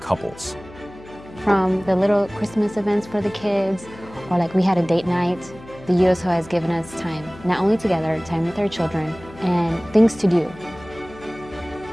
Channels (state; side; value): noise; left; hum, 19 dB below the sound